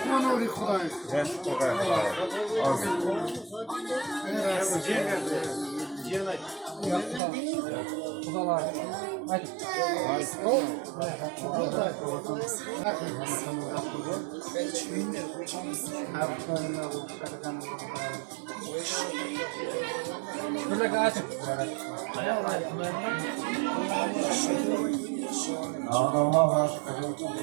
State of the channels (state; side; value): drops out; left; at 7.2 s